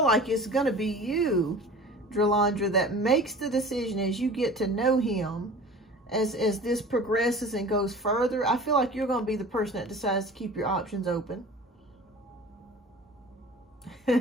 like it's going to be you, Drolandra, that makes the decision as you get to know him, as this progresses and goes further. I feel like you're going to be the person that decides to keep your options open.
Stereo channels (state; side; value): normal; both; correlation 0.41